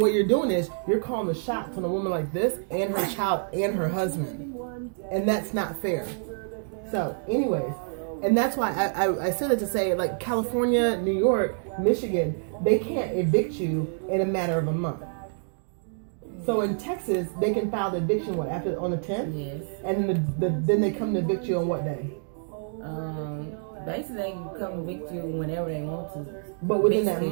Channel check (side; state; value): left; silent; digital silence